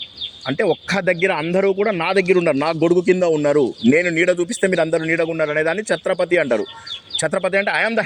అంటే ఒక్క దగ్గర అందరూ కూడా నా దగ్గర ఉన్నారు, నా గొడుగు కింద ఉన్నారు, నేను నీడ చూపిస్తే మీరు అందరూ నీడగా ఉన్నారు అనేదాన్ని ఛత్రపతి అంటారు. ఛత్రపతి అంటే ఐఎమ్ ద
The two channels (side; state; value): both; identical; correlation 1.00